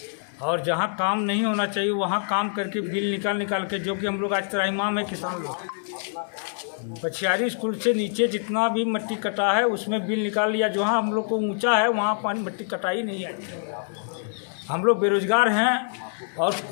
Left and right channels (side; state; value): right; silent; digital silence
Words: और जहाँ काम नहीं होना चाहिए वहाँ काम करके बिल निकाल के, जो कि हम लोग आज त्राहिमाम है किसान लोग। पछियारी स्कूल से नीचे जितना भी मिट्टी कटा है उसमें बिल निकाल लिया। जहाँ हम लोग को ऊंचा है वहाँ पानी मिट्टी कटाई नहीं है। हम लोग बेरोजगार हैं और